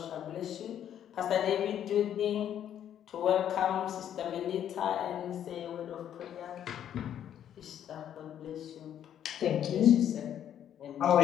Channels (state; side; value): quieter; right; 10.1 dB